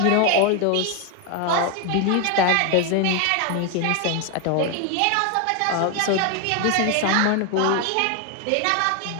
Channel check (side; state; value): both; different; correlation 0.01